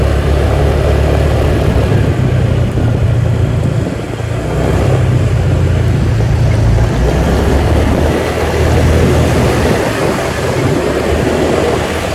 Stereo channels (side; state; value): both; identical; correlation 1.00